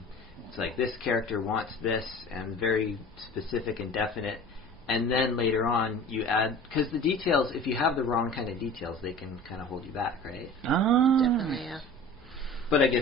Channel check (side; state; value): both; normal; correlation 0.40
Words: it's like this character wants this, and very specific and definite. And then later on, you add, because the details, if you have the wrong kind of details, they can kind of hold you back, right? Definitely, yeah. But I